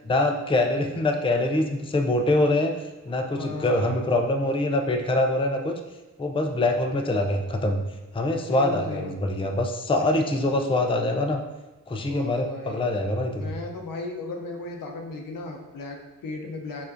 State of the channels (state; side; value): normal; both; correlation 0.44